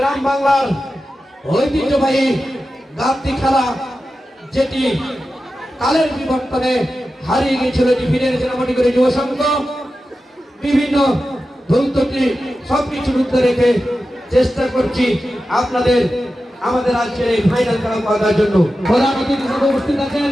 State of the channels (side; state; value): both; normal; correlation 0.92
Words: বাংলার ঐতিহ্যবাহী গাঁথি খেলা যেটি কালের বিবর্তনে হারিয়ে গিয়েছিল, এটি ফিরে এনেছে নামটি করে যুব সংঘ। বিভিন্ন ধৈর্যটি সবকিছুর উদ্ধার রেখে চেষ্টা করছি আপনাদের আমাদের আজকের এই ফাইনাল খেলা করার জন্য। প্রধান অতিথি হিসেবে উপস্থিত আছেন